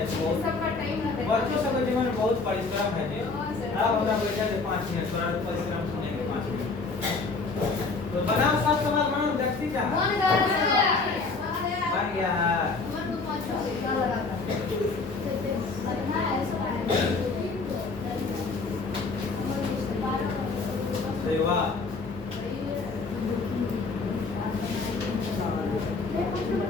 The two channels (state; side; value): quieter; right; 4.0 dB